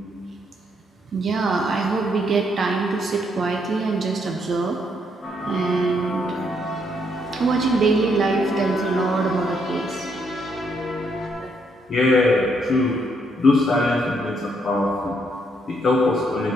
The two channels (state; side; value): normal; both; correlation 0.74